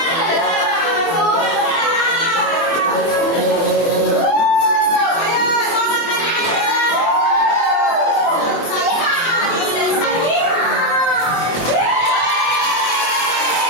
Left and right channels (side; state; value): right; late; 24 ms